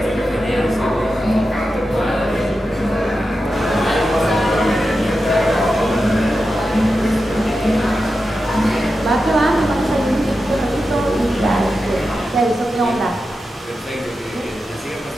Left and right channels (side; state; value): both; normal; correlation 0.90